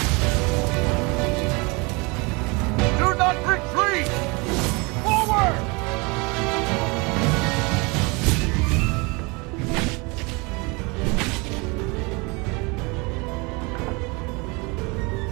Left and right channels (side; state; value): left; quieter; 27.8 dB